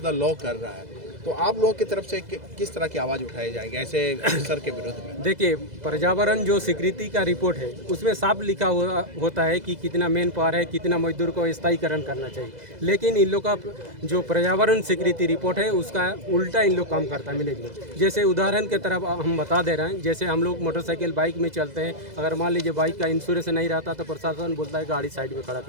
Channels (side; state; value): left; late; 2.0 ms